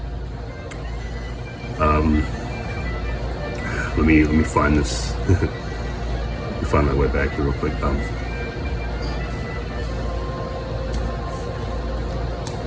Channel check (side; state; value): both; identical; correlation 1.00